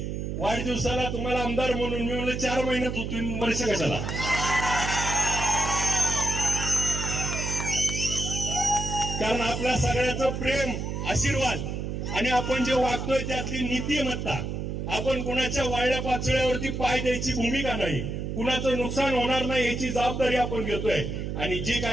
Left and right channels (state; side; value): noise; right; hum, 4 dB below the sound